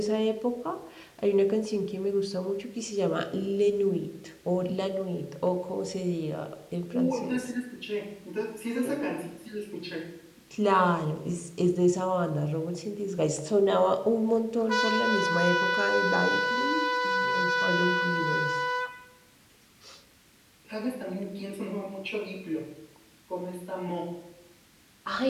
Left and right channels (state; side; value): identical; both; correlation 1.00